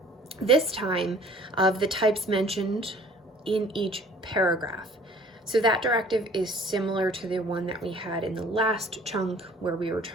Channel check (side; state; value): both; normal; correlation 0.52